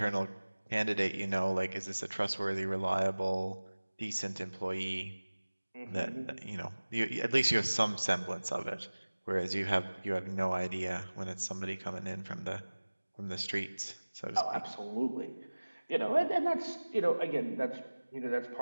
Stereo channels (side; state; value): both; inverted; correlation -1.00